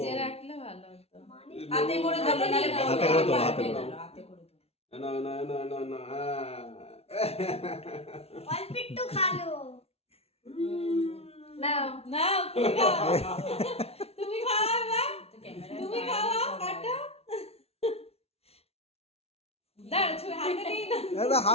রাখলে ভালো হতো। হাতে করে ধরো, নালে হাতে করে ধরো, হাতে করে ধরো। হাতে করে ধরো। না না না না না, অল্প একটু খালো। নাও নাও, তুমি খাও। তুমি খাও না, তুমি খাও, কাটো। দাঁড়া, ছুরি হাতে নিয়ে না। এটা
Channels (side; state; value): right; late; 0.30 ms